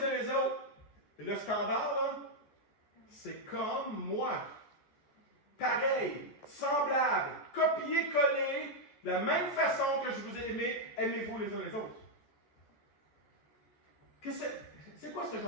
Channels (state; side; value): late; right; 14 ms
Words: uns les autres. Et le standard, là, c'est comme moi. Pareil, semblable, copier-coller, de la même façon que je vous ai aimé, aimez-vous les uns les autres. C'est quoi ce